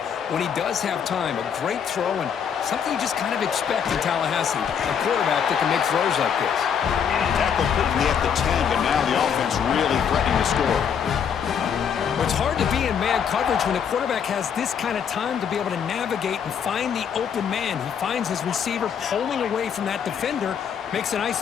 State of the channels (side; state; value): right; quieter; 7.6 dB